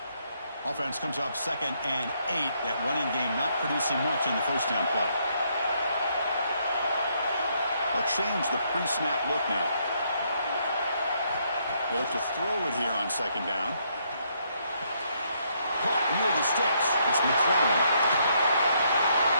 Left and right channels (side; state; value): both; inverted; correlation -0.73